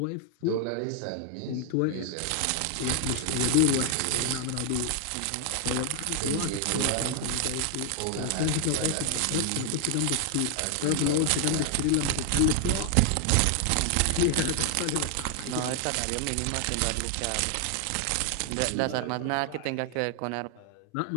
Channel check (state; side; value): different; both; correlation 0.00